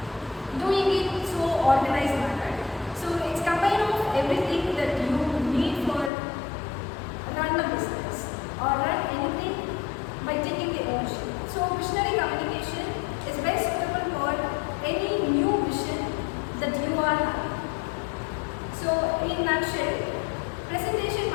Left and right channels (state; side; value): drops out; right; at 6.1 s